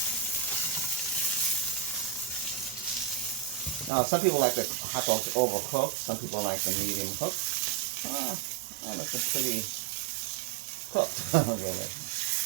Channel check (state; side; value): drops out; left; at 3.9 s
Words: Now, some people like the hot dogs overcooked. Some people like the medium cooked. I like them pretty cooked, really.